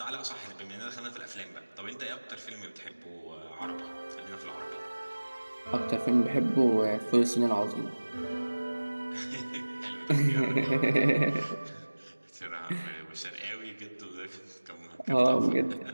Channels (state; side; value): inverted; both; correlation -1.00